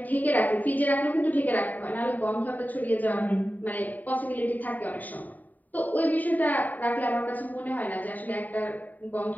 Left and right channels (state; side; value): late; right; 0.081 ms